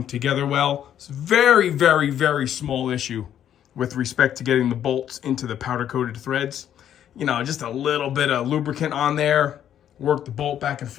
together well. It's a very, very, very small issue with respect to getting the bolts into the powder-coated threads. Just a little bit of lubricant on there. Work the bolt back and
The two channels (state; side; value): quieter; right; 10.2 dB